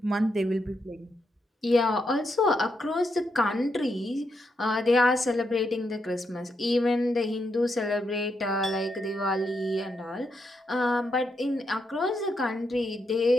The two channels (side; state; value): both; normal; correlation 0.81